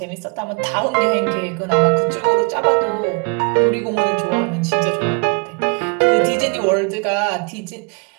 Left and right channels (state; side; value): quieter; left; 34.1 dB